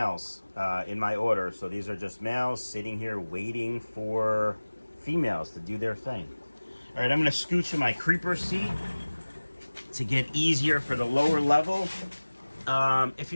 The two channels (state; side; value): inverted; both; correlation -1.00